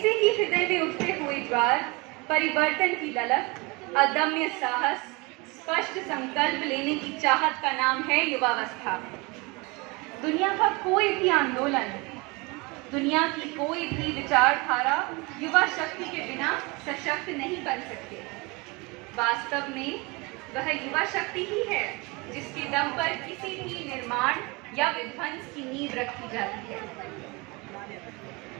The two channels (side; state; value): left; quieter; 26.7 dB